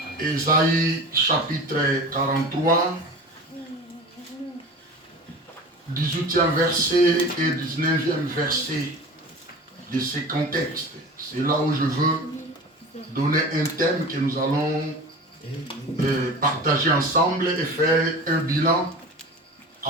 Ésaïe chapitre 43, 18e verset et 19e verset de ce contexte. C'est là où je veux donner un thème que nous allons partager ensemble et faire un bilan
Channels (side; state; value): both; normal; correlation 0.35